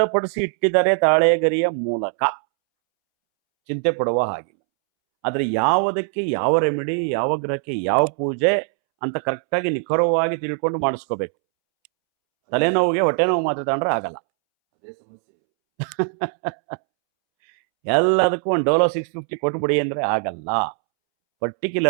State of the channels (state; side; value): silent; left; 65 dB below the other